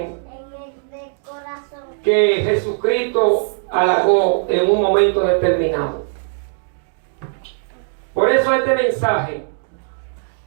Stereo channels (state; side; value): silent; left; digital silence